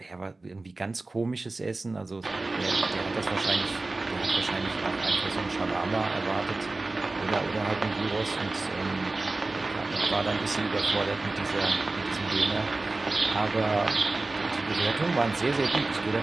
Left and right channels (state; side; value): quieter; left; 3.2 dB